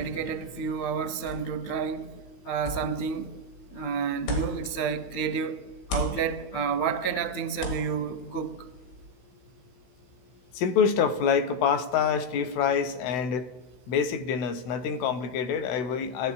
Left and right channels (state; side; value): late; right; 16 ms